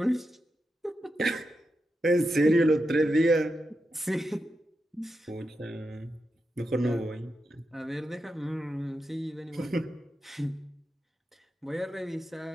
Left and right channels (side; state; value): both; normal; correlation 0.87